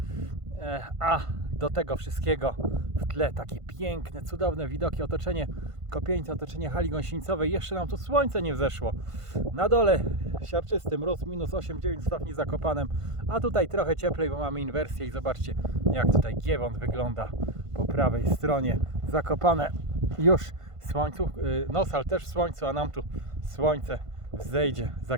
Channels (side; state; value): left; late; 1.5 ms